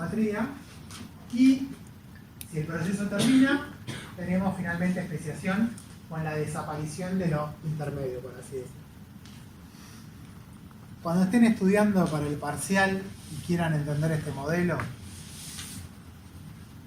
Y si el proceso termina, tenemos finalmente especiación con la desaparición de lo intermedio, por así decirlo. Cuando estén estudiando para el parcial y quieran entender este modelo,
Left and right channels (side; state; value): both; identical; correlation 1.00